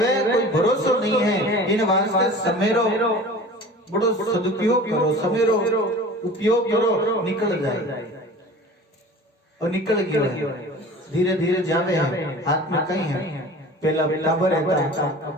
कोई भरोसा नहीं है। इन वास्ते समेरो बड़ो सदुपयोग करो, समेरो उपयोग करो, निकल जाए और निकल गया है, धीरे धीरे जावे है, हाथ में कहीं है। पहला टाबर रहता,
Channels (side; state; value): both; normal; correlation 0.40